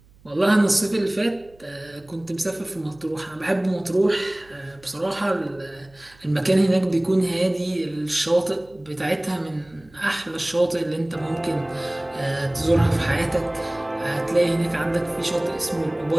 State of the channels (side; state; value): right; noise; hum, 28 dB below the sound